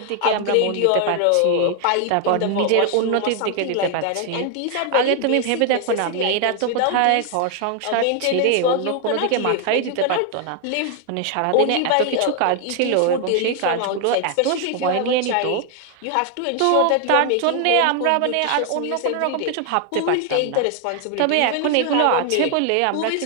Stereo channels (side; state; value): both; different; correlation 0.00